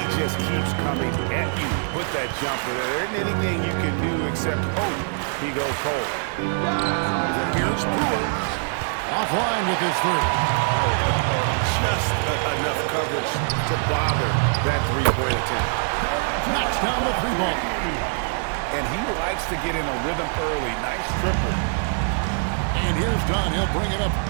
just keeps coming at you with that jumper. There isn't anything you can do except hope he goes cold. Here's Brewer. Offline with his three. Just enough coverage to bother that three-point attempt. Knocks down the three ball. And he likes to get in a rhythm early. Nice triple. And here's Dunn. He'll bring it up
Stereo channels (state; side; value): silent; left; 63 dB below the other